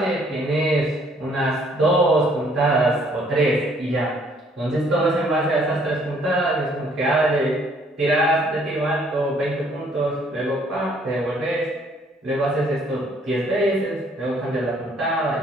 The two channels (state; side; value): normal; both; correlation 0.63